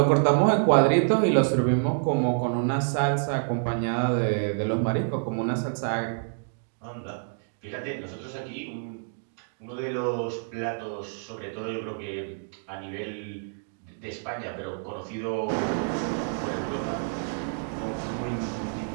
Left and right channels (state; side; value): silent; left; digital silence